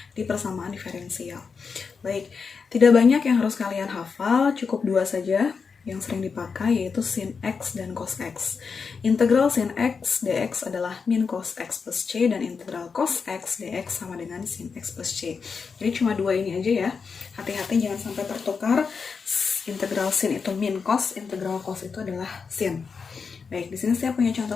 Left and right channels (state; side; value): quieter; right; 5.4 dB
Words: di persamaan diferensial. Baik, tidak banyak yang harus kalian hafal, cukup 2 saja yang sering dipakai, yaitu sin x dan cos x. Integral sin x dx adalah min cos x plus c, dan integral cos x dx sama dengan sin x plus c. Jadi cuma 2 ini aja ya. Hati-hati jangan sampai tertukar. Integral sin itu min cos, integral cos itu adalah sin. Baik, di sini saya punya